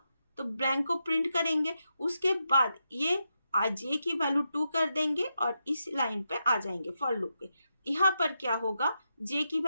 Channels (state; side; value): inverted; both; correlation -0.86